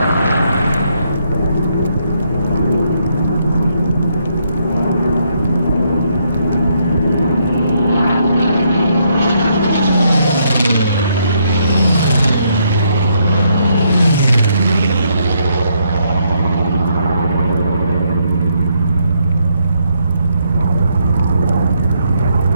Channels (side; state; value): both; inverted; correlation -0.74